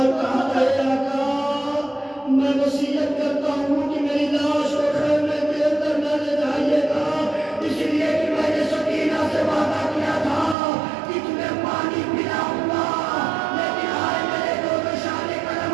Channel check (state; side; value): drops out; left; at 10.6 s